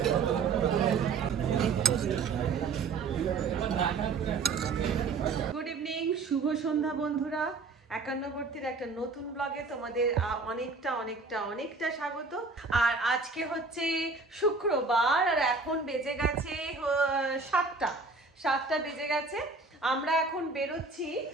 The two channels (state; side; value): quieter; left; 4.2 dB